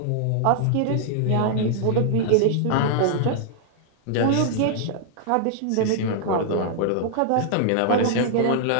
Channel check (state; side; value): different; both; correlation -0.01